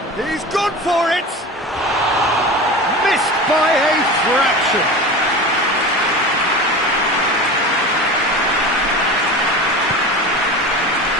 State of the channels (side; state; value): both; normal; correlation 0.31